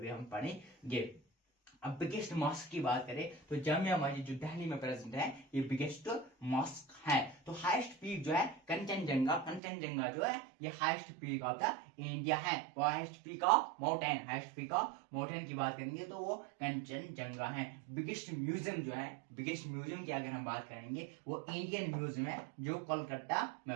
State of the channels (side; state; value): left; drops out; at 9.6 s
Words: हम पढ़ेंगे। अब बिगेस्ट मॉस्क की बात करें तो जामिया मस्जिद जो दिल्ली में प्रेजेंट है, ये बिगेस्ट मॉस्क है। तो हाईएस्ट पीक जो है कंचनजंगा जो है, ये highest peak of the India है। वो हाईएस्ट पीक ऑफ माउंटेन की बात करेंगे तो वो कंचनजंगा है। बिगेस्ट म्यूजियम की अगर हम बात करेंगे, वो इंडियन म्यूजियम है, जो कोलकाता